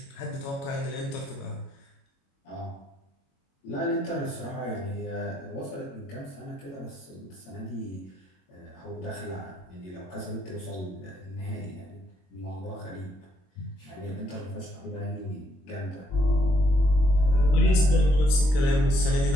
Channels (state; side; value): late; right; 22 ms